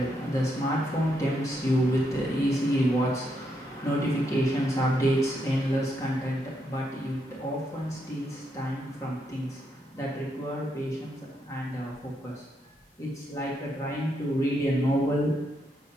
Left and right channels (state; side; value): normal; both; correlation 0.79